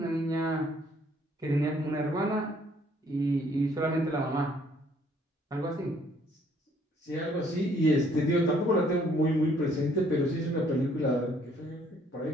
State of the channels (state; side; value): normal; both; correlation 0.63